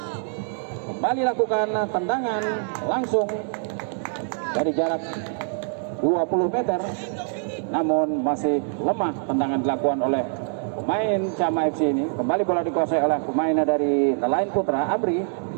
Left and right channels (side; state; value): left; silent; 62 dB below the other